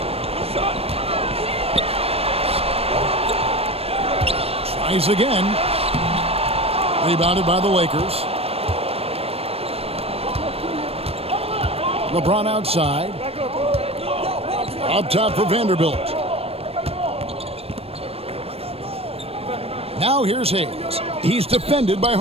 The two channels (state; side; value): late; left; 0.28 ms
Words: Tries again. Rebounded by the Lakers. LeBron outside. Up top for Vanderbilt. Now here's Hayes. He's defended by